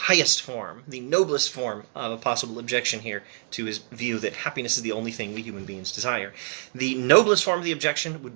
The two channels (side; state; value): left; silent; digital silence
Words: form, the noblest form of a possible objection here to his view that happiness is the only thing we human beings desire. The noblest form of the objection would